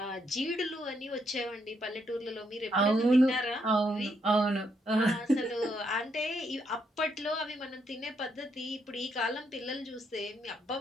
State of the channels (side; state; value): both; normal; correlation 0.76